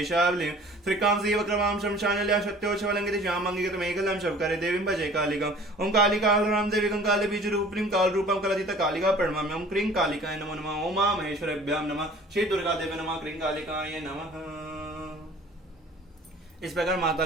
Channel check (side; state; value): both; normal; correlation 0.48